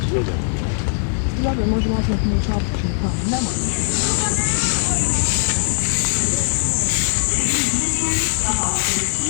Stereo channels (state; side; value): silent; right; digital silence